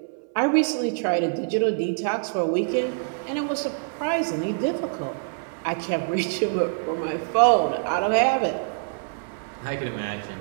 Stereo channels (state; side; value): silent; left; 58 dB below the other